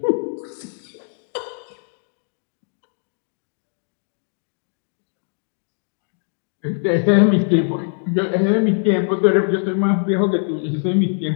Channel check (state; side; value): silent; right; 64 dB below the other